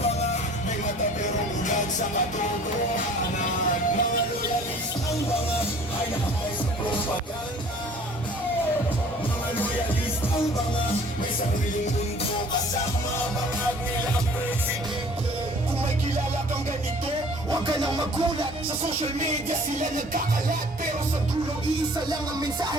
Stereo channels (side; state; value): both; normal; correlation 0.50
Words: may mata pero ugat sa katotohanan. Mga loyalistang mga ay nahay sa propaganda. Mga loyalistang mga may sariling mundo kasama bangag nilang presidente. Kung may kilala kang ganito, huwag ka nang magulat. Sa social media sila nagkakalat, pero sa dulo iisa lang ang